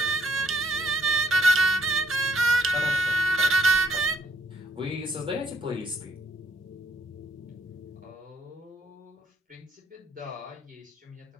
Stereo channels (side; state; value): both; normal; correlation 0.72